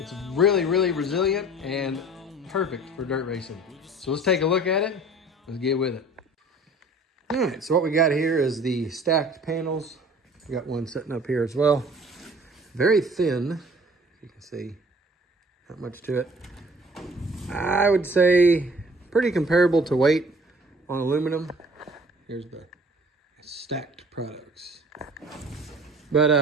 really, really resilient and perfect for dirt racing. So let's take a look at it. Let's get with it. All right, so what we got here is the Stakt panels. We got one sitting up here as well. Very thin, you can see, not much to it. I would say pretty comparable to weight on aluminum. Here's the Stakt Products.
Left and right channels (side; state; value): both; normal; correlation 0.50